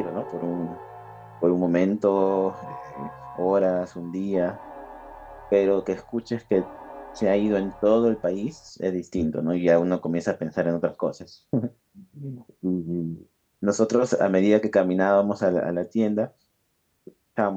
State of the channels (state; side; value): identical; both; correlation 1.00